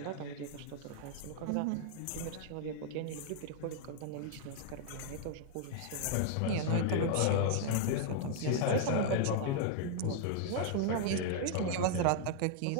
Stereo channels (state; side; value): different; both; correlation 0.00